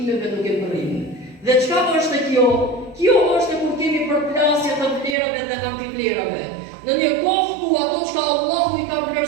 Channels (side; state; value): left; drops out; at 5.2 s